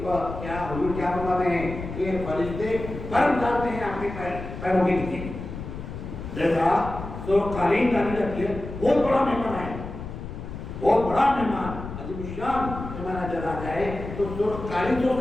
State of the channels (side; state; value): left; noise; rumble, 9 dB below the sound